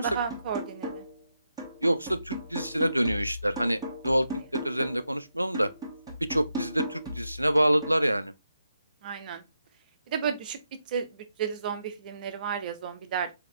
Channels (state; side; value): inverted; both; correlation -0.84